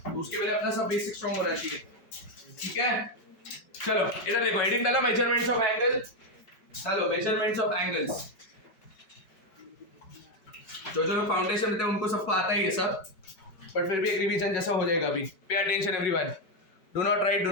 तो उसके पहले अपना सब बेसिक स्ट्रॉन्ग होना चाहिए, ठीक है। चलो इधर देखो, हेडिंग डालो मेजरमेंट्स ऑफ एंगल्स। चलो मेजरमेंट्स ऑफ एंगल्स, जो लोग फाउंडेशन देते हैं उनको सबको आता ही है सब, बट फिर भी एक रिवीजन जैसा हो जाएगा अभी। Pay attention everyone, do not right, do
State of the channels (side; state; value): right; late; 5.0 ms